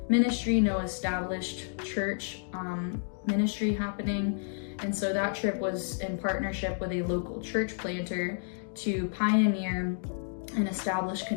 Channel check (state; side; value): silent; right; digital silence